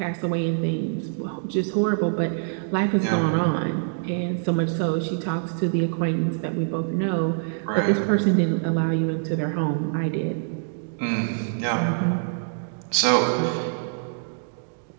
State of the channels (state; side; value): silent; left; digital silence